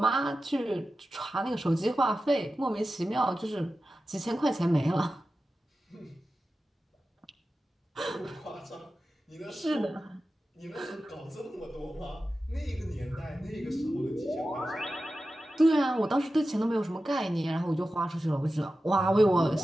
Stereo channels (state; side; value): normal; both; correlation 0.93